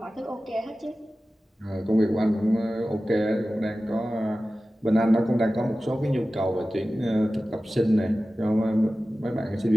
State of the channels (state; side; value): normal; both; correlation 0.95